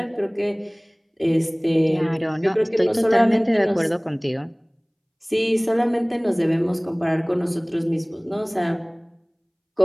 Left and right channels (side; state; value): both; identical; correlation 1.00